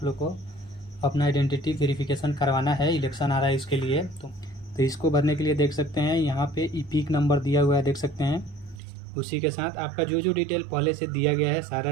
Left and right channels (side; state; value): left; drops out; at 8.8 s